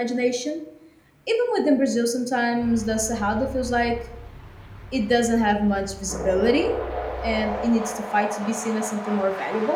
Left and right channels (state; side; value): identical; both; correlation 1.00